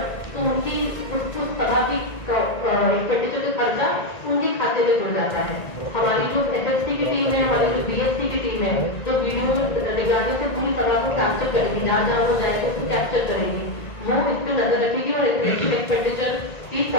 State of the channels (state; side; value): late; right; 1.9 ms